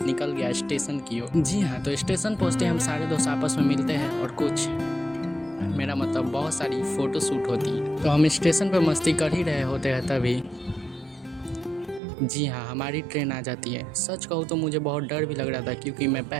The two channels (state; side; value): drops out; left; at 12.0 s